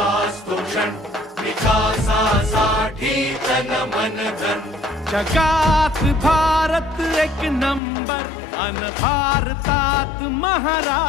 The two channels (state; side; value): drops out; right; at 7.8 s